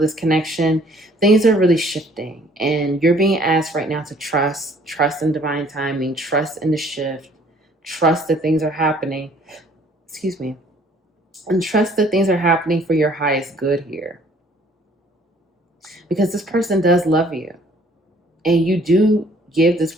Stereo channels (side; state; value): both; normal; correlation 0.58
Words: this connection, things are really shifting. And you're being asked right now to trust in divine timing, trust in the shift, trust that things are happening, excuse me, and trust that things are happening for your highest good here. Because this person does love you. And you do give this